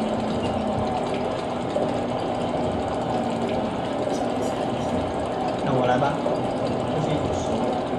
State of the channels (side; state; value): both; identical; correlation 1.00